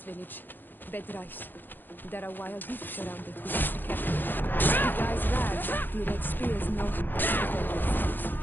village. Bed rice. There are wild beasts around it. We must be careful. The guys rag. The red spears know how to defend themselves.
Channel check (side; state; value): right; late; 0.091 ms